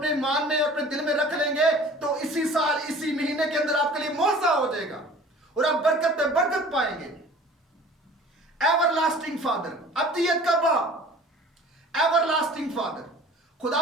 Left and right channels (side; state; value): both; normal; correlation 0.46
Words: ईमान में और अपने दिल में रख लेंगे, तो इसी साल, इसी महीने के अंदर आपके लिए मौजज़ा हो जाएगा और आप बरकत पे बरकत पाएंगे। एवरलास्टिंग फादर, अब्दियत का बाप, एवरलास्टिंग फादर।